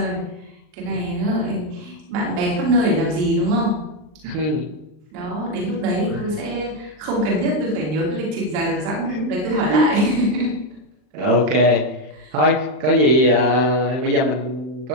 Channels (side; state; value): left; late; 39 ms